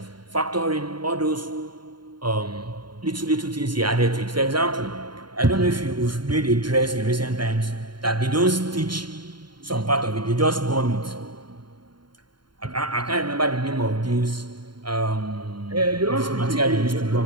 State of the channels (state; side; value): late; left; 0.72 ms